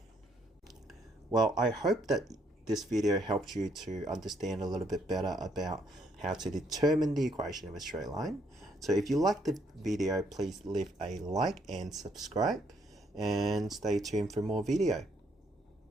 Well, I hope that this video helped you to understand a little bit better about how to determine the equation of a straight line. So if you liked the video, please leave a like and subscribe, and stay tuned for more video.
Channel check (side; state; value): both; normal; correlation 0.70